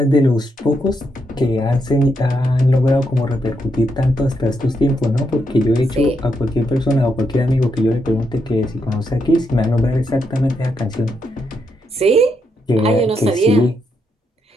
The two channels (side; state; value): both; normal; correlation 0.80